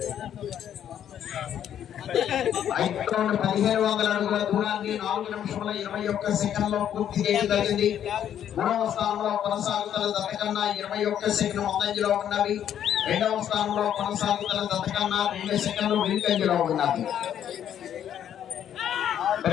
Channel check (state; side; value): quieter; right; 9.9 dB